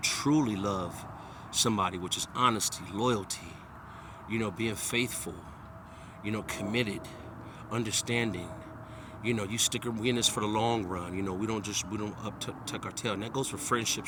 truly love somebody, which is honesty, loyalty, you know, being faithful, you know, committed, understanding. You know, we in this for the long run. You know, we don't tuck our tail. And that goes for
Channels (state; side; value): identical; both; correlation 1.00